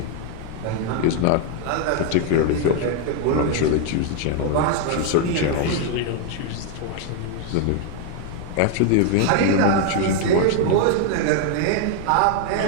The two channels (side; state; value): both; different; correlation 0.01